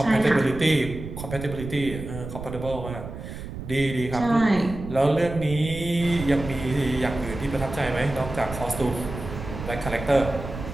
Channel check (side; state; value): right; noise; rumble, 9 dB below the sound